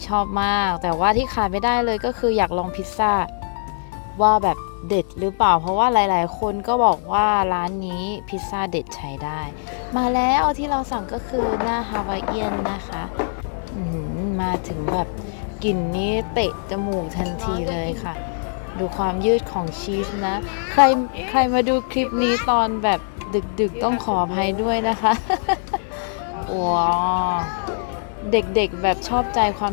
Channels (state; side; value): silent; right; digital silence